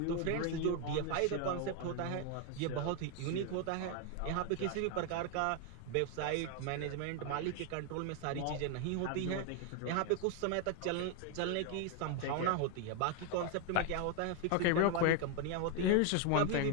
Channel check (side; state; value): both; different; correlation 0.01